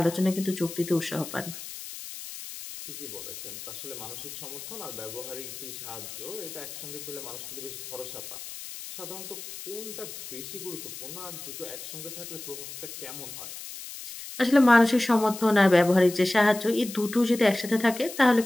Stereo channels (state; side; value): noise; left; hiss, 11 dB below the sound